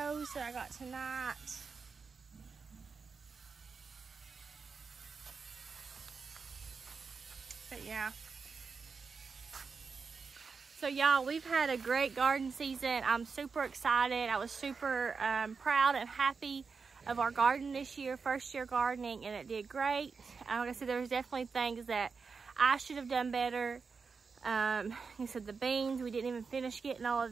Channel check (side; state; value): left; quieter; 5.1 dB